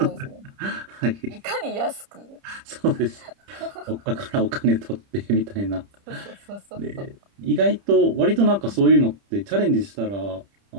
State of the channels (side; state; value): left; late; 30 ms